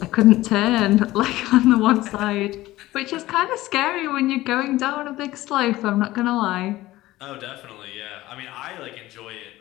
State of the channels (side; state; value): right; quieter; 17.0 dB